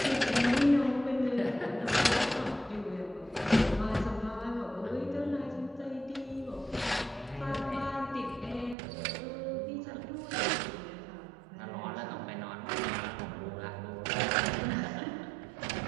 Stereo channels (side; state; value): left; drops out; at 8.8 s